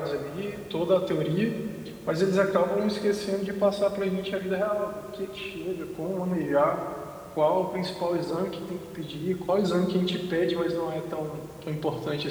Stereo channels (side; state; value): both; identical; correlation 1.00